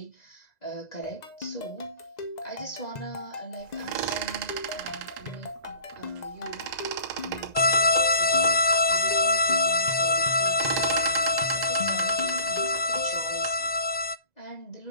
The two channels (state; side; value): late; right; 2.0 ms